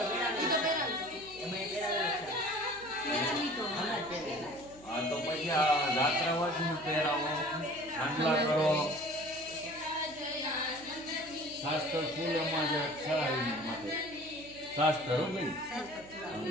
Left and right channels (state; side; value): noise; right; hum, 21 dB below the sound